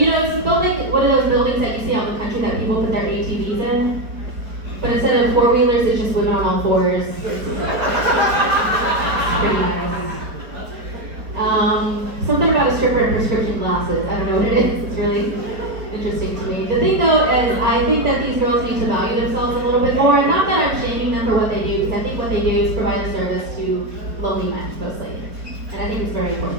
built like one of those buildings that you see out in the country that people put their ATVs in. But instead of 4-wheelers, it's just women on all 4s. It's pretty nice. Something about a stripper and prescription glasses. I don't know what it is. It's really interesting to me. The thing though is I think that these girls need to value themselves a little bit more. And not that I'm shaming them for what they do, because I think what they do is provide a service to lonely men mostly. And I think it's very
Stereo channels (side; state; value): left; late; 4.7 ms